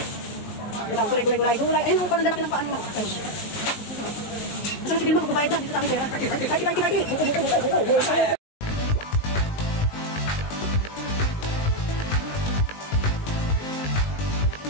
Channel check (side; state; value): right; late; 19 ms